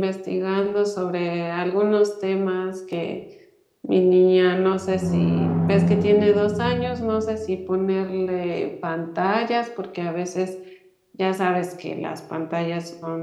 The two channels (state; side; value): identical; both; correlation 1.00